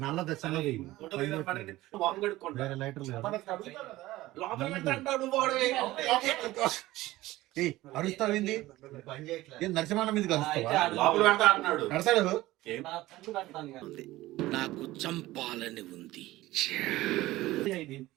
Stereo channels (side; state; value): left; quieter; 17.3 dB